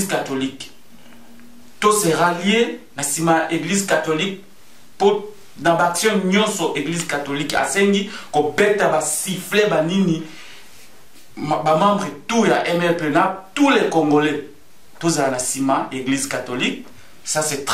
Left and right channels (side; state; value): both; identical; correlation 1.00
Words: catholique. Tous se rallier à Simaya église catholique pour dans l'action nyonso église catholique asengi ko beta ba siffler ba nini ba membre tout ya MLP na tous les Congolais tous à la cima église catholique, ça c'est